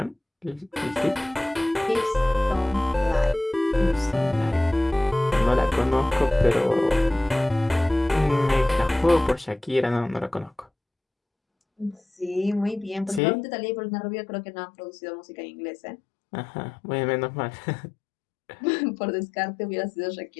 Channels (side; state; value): right; drops out; at 13.2 s